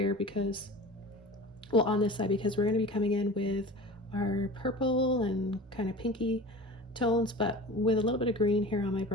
because, well, on this side, because we're going to be coming in with our purple and kind of pinky tones, but with a little bit of green here on my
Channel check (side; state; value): both; normal; correlation 0.36